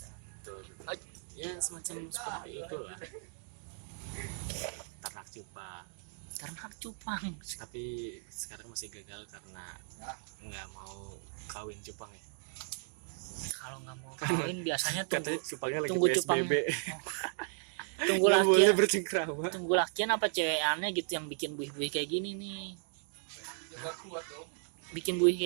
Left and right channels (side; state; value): left; silent; 54 dB below the other